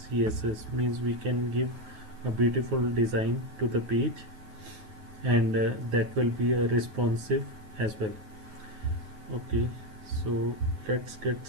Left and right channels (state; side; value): late; left; 9.4 ms